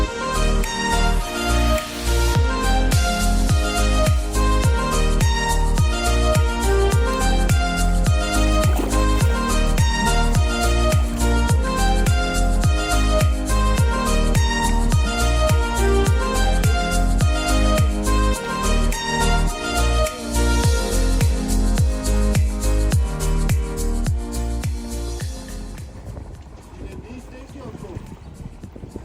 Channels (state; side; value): identical; both; correlation 1.00